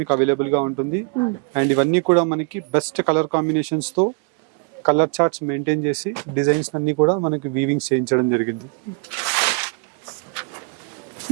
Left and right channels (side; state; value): left; quieter; 33.6 dB